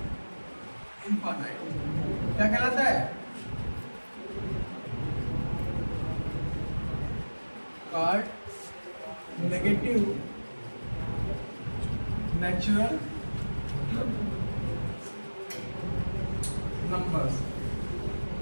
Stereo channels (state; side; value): inverted; both; correlation -1.00